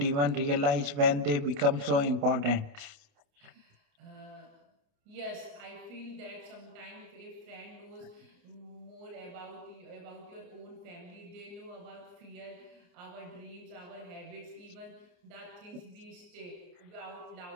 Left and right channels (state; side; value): late; left; 28 ms